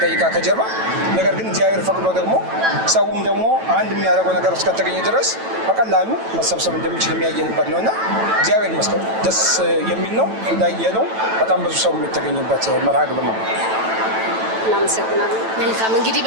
ከጀርባ። ነገር ግን እግዚአብሔር ፈቅዶ ደግሞ ሰውም ደግሞ አንድ የሚያደርገው ነገር እስከተገኘ ድረስ በቀላሉ መሰብሰብ እንደሚችል የሚያየንበት ነው እና እግዚአብሔር ይመስገን ደስ የሚል ነው። እንዳየነው በጣም ብዙ ሰው የተገኘበት መርሃ ግብር ነው። እናመሰግናለን። መልካም እንግዲህ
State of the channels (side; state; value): left; late; 9.1 ms